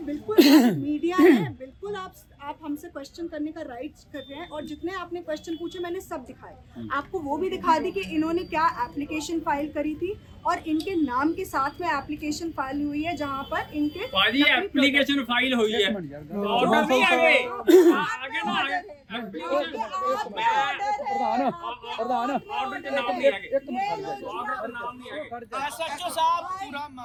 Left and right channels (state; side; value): identical; both; correlation 1.00